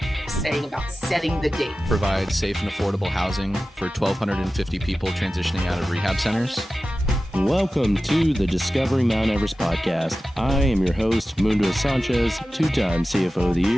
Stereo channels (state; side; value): normal; both; correlation 0.95